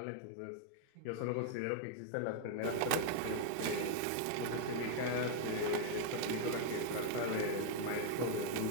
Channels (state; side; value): different; both; correlation 0.00